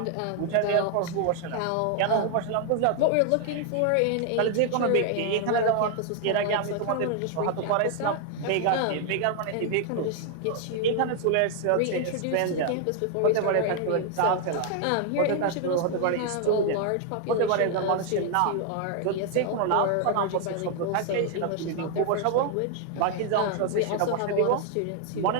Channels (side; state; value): both; different; correlation 0.00